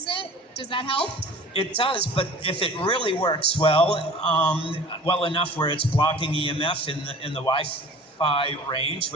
it, does that help? It does, but if it really works well, well enough where it's blocking EMF in the Wi-Fi range,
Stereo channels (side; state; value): both; normal; correlation 0.44